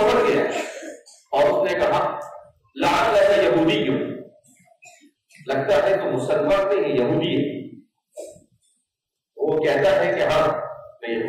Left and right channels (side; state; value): both; identical; correlation 1.00